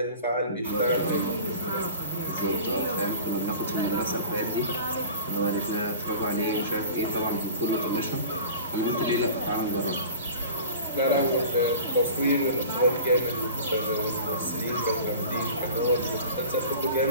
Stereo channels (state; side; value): inverted; both; correlation -0.40